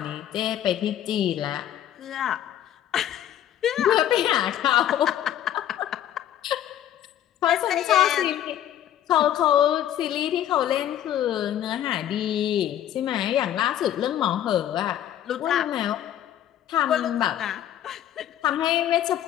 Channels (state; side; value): quieter; right; 11.3 dB